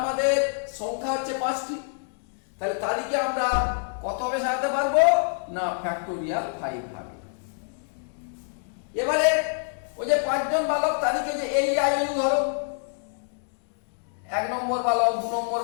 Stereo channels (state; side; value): silent; right; digital silence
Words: সংখ্যা হচ্ছে 5টি। তাহলে তারিখে আমরা কত ভাবে সাজাতে পারবো না? ফ্যাক্টোরিয়াল 5 ভাবে। এবারে ওই যে 5 জন বালক তারিখে যে AEIOU ধরো, 1 নম্বর বালক, 2 নম্বর